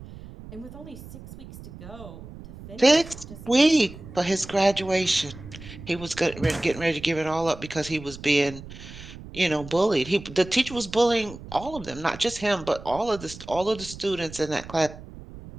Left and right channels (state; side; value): noise; right; rumble, 15 dB below the sound